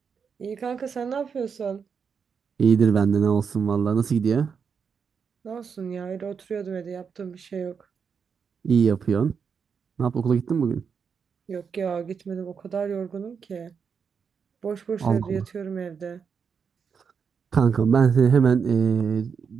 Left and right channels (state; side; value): quieter; left; 6.3 dB